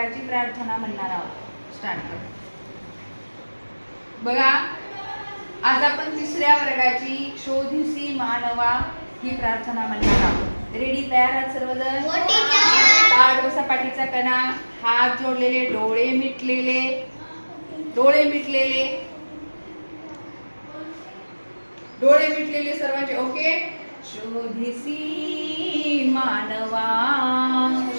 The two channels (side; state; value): both; inverted; correlation -1.00